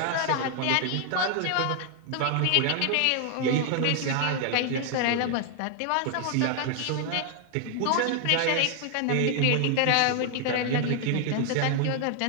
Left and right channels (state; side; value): different; both; correlation 0.00